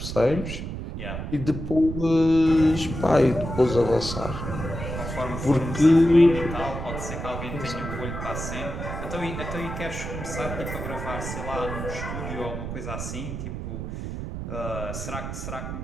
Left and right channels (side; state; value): right; noise; rumble, 6 dB below the sound